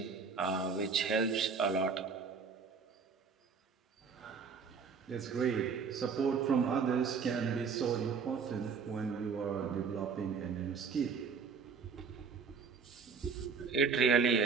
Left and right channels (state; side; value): quieter; left; 5.6 dB